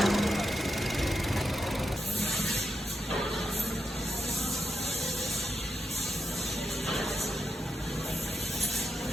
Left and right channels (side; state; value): both; normal; correlation 0.86